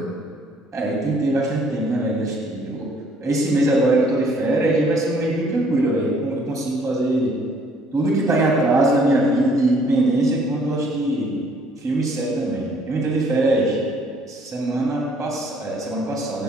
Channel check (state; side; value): normal; both; correlation 0.62